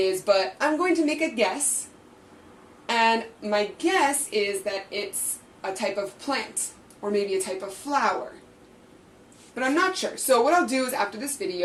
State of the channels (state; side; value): identical; both; correlation 1.00